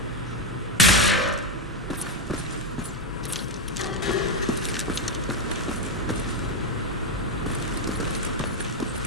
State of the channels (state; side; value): normal; both; correlation 0.07